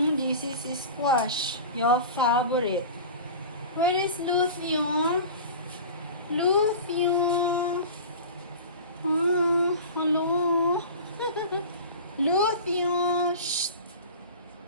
is squash, your favorite. Where is Luthio? Hello. Luthio. Shh.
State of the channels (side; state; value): both; inverted; correlation -0.35